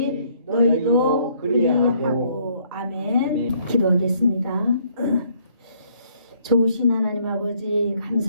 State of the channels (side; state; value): both; inverted; correlation -0.65